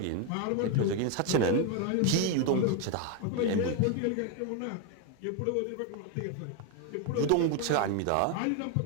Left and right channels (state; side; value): different; both; correlation 0.01